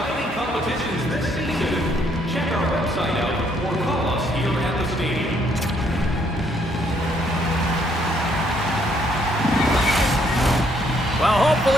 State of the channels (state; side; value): normal; both; correlation 0.69